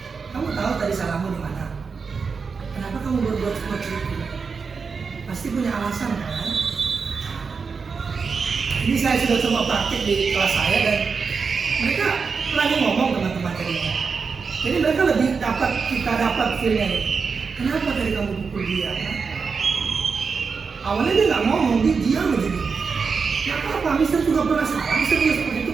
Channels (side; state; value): left; quieter; 5.2 dB